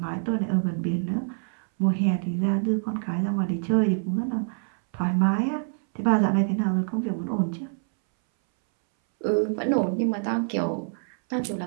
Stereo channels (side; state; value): left; silent; 61 dB below the other